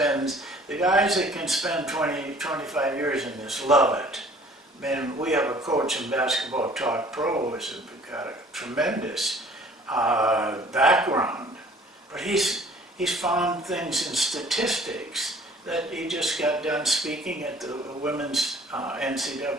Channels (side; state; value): both; normal; correlation 0.53